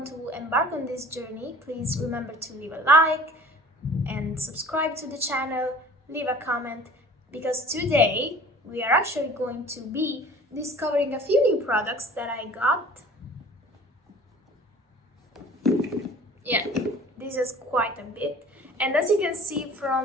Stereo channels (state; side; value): normal; both; correlation 0.46